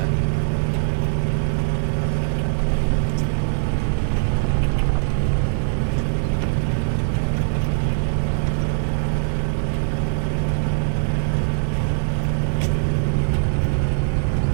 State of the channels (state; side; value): silent; left; 64 dB below the other